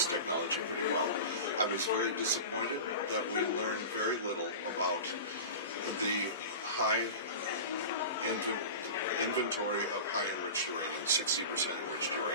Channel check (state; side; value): inverted; both; correlation -0.31